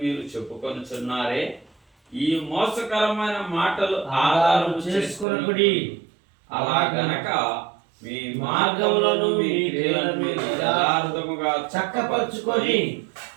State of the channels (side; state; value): left; drops out; at 5.2 s